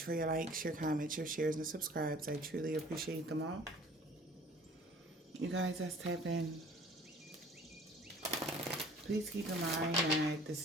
for your likes, your comments, your shares, and subscribes. I truly appreciate them all. You guys that's tapping, please keep in mind that this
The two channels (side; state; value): both; normal; correlation 0.50